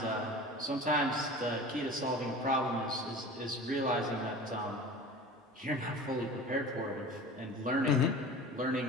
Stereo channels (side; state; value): both; normal; correlation 0.37